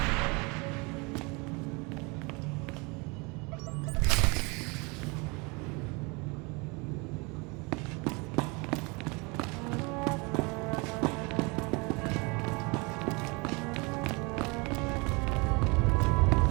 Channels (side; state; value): left; quieter; 28.5 dB